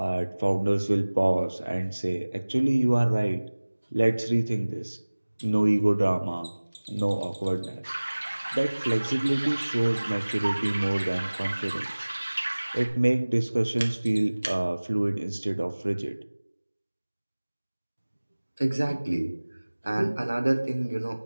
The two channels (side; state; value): both; inverted; correlation -1.00